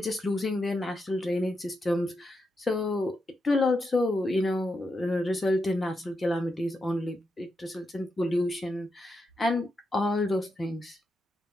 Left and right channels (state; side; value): normal; both; correlation 0.85